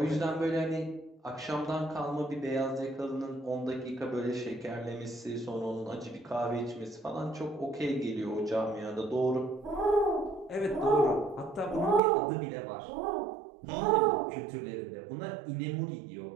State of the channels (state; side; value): drops out; left; at 12.0 s